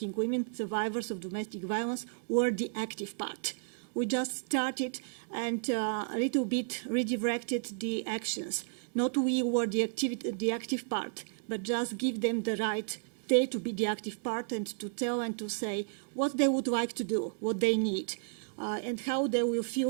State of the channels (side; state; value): left; silent; digital silence